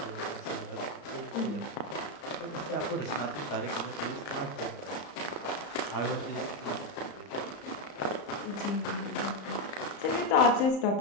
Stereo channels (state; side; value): late; right; 34 ms